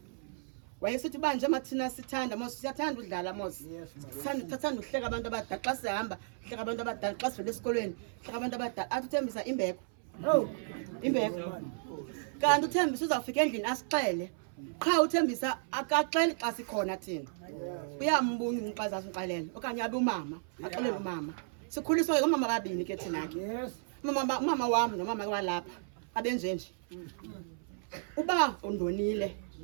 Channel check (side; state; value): left; silent; 55 dB below the other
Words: Wayesithi banje mathina sithanda mos siyathanda udlala mos. Sithanda uhleka abantu abadala xa sihamba, hleka abantu abadala xa sivele esikolweni, hleka abantu abadala. Athi uThembisa imbeko. Oh. Imbeko. Kanti uThembisa uzawufika endlini asixele. Qha uThembisa akaxeli xa sikhona thina. Uyambunga umxazazi uxelela okanye abe umama, axelele umama. Sikhuliswa ke umama babini ke thina ke. Yes. Umama wami nomama walapha abenjenje. Uba undonile